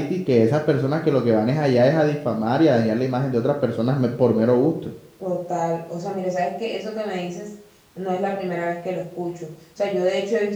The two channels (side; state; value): both; identical; correlation 1.00